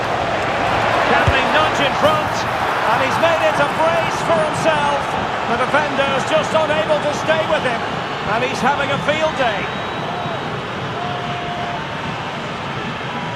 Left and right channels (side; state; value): both; identical; correlation 1.00